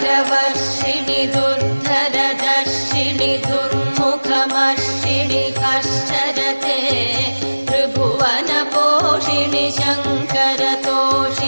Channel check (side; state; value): both; inverted; correlation -1.00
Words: दुर्धरदर्शिनि दुर्मुखमर्षिणि हर्षरते त्रिभुवनपोषिणि